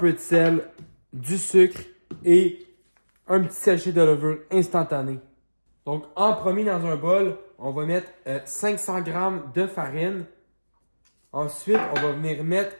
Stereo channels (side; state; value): both; inverted; correlation -1.00